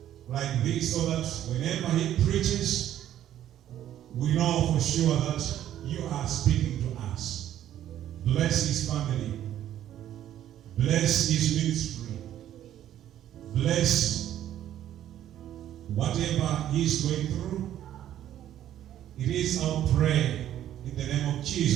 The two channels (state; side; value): quieter; left; 11.6 dB